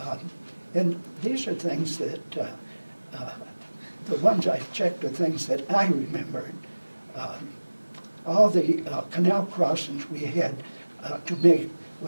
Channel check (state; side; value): inverted; both; correlation -1.00